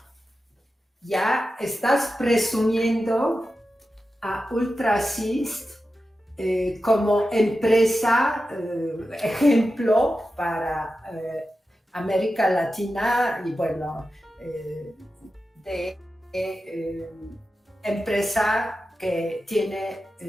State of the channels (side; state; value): both; normal; correlation 0.92